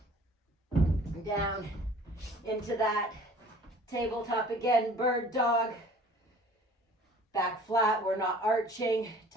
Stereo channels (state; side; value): normal; both; correlation 0.49